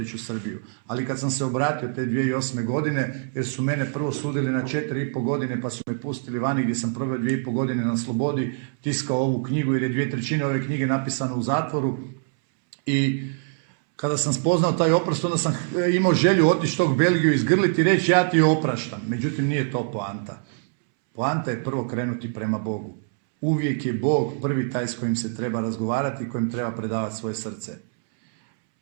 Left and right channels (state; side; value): silent; left; 62 dB below the other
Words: u Srbiju. Ali kad sam se obratio te 2008. godine, jer su mene prvo sudili na 4,5 godine, pa su me pustili vani gdje sam proveo 2,5 godine na slobodi, tiskao ovu knjigu jer je 2/3 ove knjige napisano u zatvoru. I kada sam spoznao taj oprost, onda sam imao želju otići tog Belgiju, izgrliti i reći ja ti opraštam. Međutim, nije to poanta. Poanta je prvo krenuti prema Bogu. Uvijek je Bog prvi taj s kojim se treba razgovarati i kojim treba predavati svoje srce.